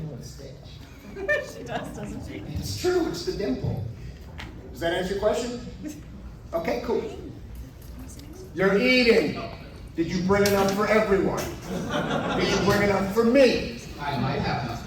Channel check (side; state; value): both; identical; correlation 1.00